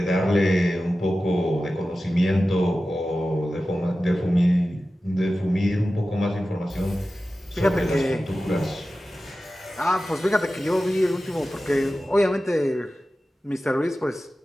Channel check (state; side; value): normal; both; correlation 0.94